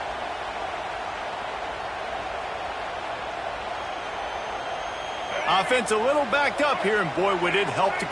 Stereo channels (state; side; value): identical; both; correlation 1.00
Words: Offense a little backed up here, and boy, would it help to